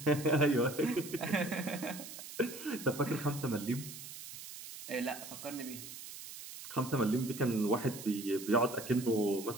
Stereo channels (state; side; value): noise; right; hiss, 12 dB below the sound